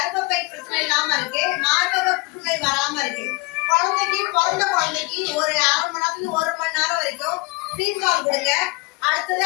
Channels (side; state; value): right; quieter; 26.5 dB